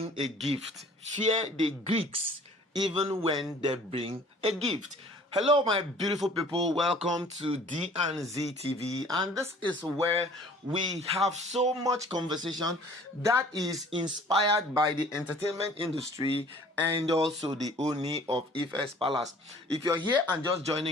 a gift. Fear the Greeks even when they bring a gift. Hello, my beautiful people. Welcome to D&Z TV. And this is where we have so much conversation that is inspired by the entertainment industry and also the Ooni of Ife's palace. If you're here and just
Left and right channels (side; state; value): both; normal; correlation 0.51